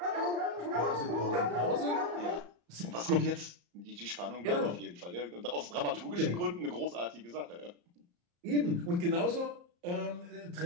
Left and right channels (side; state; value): left; late; 34 ms